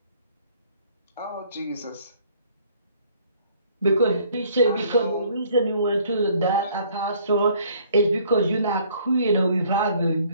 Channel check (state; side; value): inverted; both; correlation -0.59